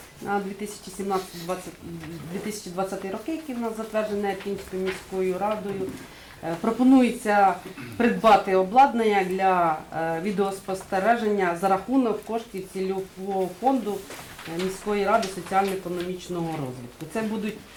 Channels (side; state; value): both; identical; correlation 1.00